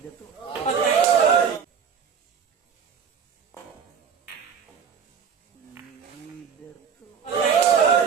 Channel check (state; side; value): quieter; left; 7.0 dB